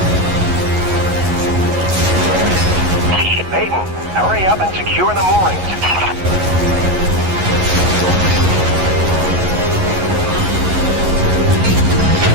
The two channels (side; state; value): left; late; 11 ms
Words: Hurry up and secure the moorings.